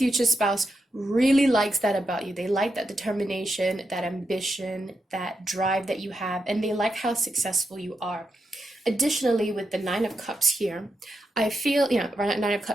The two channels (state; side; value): normal; both; correlation 0.85